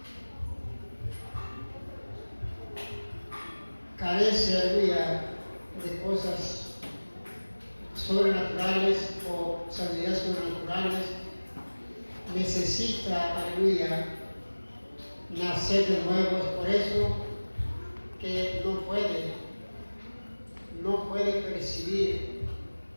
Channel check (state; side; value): inverted; both; correlation -1.00